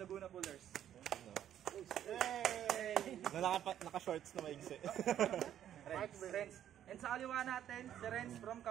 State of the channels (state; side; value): quieter; left; 10.6 dB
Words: Pullers. Yay! Naka-shorts na maigsi. Renz. And sa kaliwa natin, si Renz from